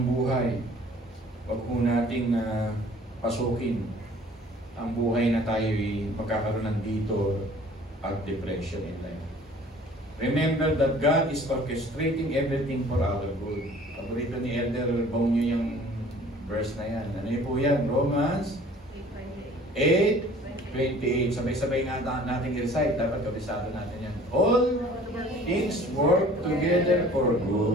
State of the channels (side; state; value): both; normal; correlation 0.51